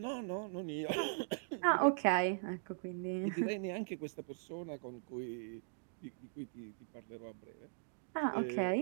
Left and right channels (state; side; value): silent; left; digital silence